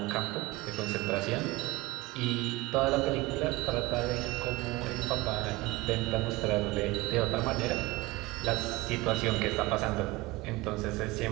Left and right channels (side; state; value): left; quieter; 20.9 dB